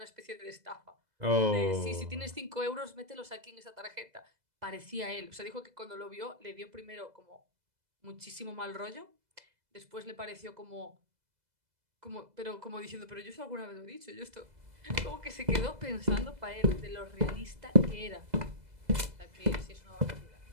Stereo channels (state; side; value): late; left; 2.0 ms